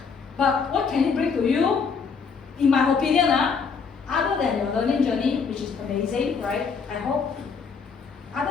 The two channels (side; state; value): right; quieter; 5.6 dB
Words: But what can it bring to you? In my opinion, other than your learning journey, which is amazing, right? I hope.